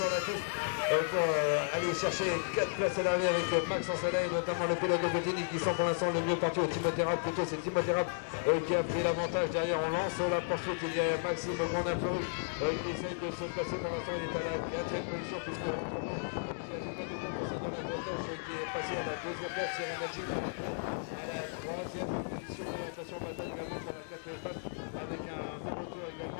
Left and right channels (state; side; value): silent; right; digital silence